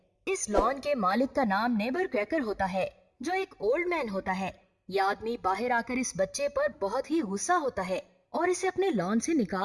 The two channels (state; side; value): identical; both; correlation 1.00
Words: इस लॉन के मालिक का नाम नेबर क्रैकर होता है, जो एक ओल्ड मैन होता है। ये आदमी बाहर आकर इस बच्चे पर बहुत ही गुस्सा होता है और इसे अपने लॉन से